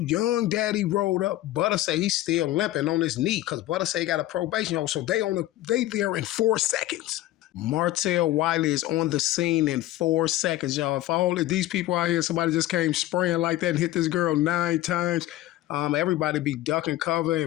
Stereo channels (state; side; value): quieter; right; 15.4 dB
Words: young daddy rolled up. Butter say he's still limping on his knee because Butter say he got a probation. So they there in 4 seconds. Martell Wiley is on the scene in 4 seconds, y'all. If all of these people out here, somebody just came spraying like that and hit this girl 9 times, everybody be ducking cover